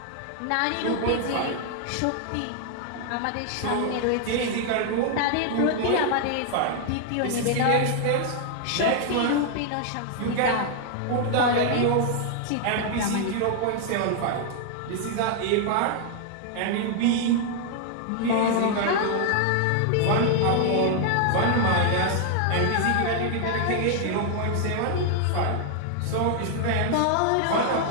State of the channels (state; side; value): different; both; correlation 0.00